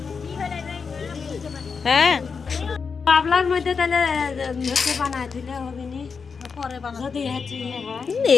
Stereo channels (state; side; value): quieter; right; 5.5 dB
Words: হ্যাঁ, পাবলার মধ্যে তাহলে বানায় দিলে হবে নি, যদি